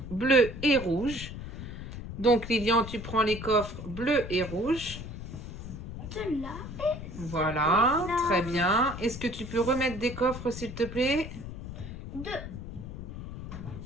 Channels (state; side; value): noise; left; rumble, 9 dB below the sound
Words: bleu et rouge. Donc, Lilian, tu prends les coffres bleu et rouge. Celui-là. Voilà, Là. très bien. Est-ce que tu peux remettre des coffres, s'il te plaît? 2.